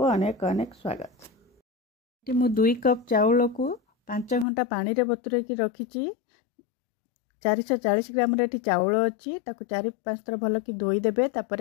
अनेक अनेक स्वागत। मु 2 कप चाउल को 5 घंटा पानी रे बतुरे की रखिछि। 440 ग्राम रे चाउल अछि, ताको 4-5 थर भल की धोई देबे।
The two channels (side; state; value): right; drops out; at 4.5 s